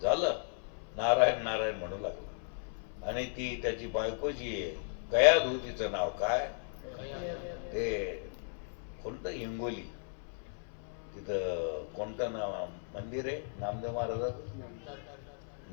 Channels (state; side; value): silent; right; 54 dB below the other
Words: झालं, नारायण नारायण म्हणू लागला. आणि ती त्याची बायको जी आहे कयाधू, तिचं नाव काय, ते कोणतं हिंगोली, तिथं कोणतं नाव मंदिर आहे नामदेव महाराजाचं,